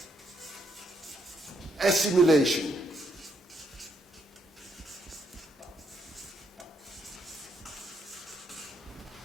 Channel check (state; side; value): normal; both; correlation 0.75